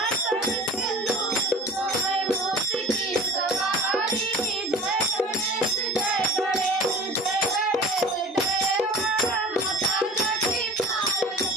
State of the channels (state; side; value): normal; both; correlation 0.40